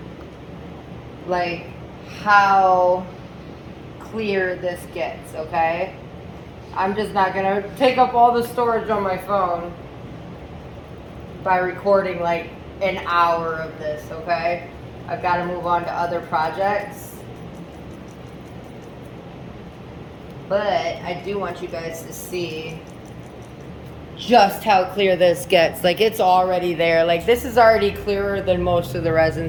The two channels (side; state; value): both; identical; correlation 1.00